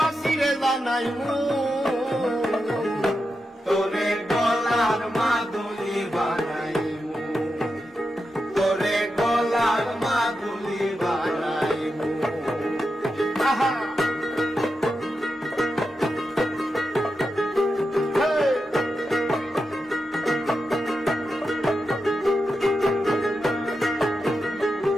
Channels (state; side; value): normal; both; correlation 0.88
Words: রে জানাই মু তোরে গলার মাদুলি বানাইমু তোরে গলার মাদুলি বানাইমু আহা